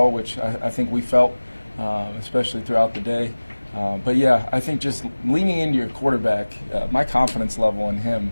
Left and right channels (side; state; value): both; inverted; correlation -1.00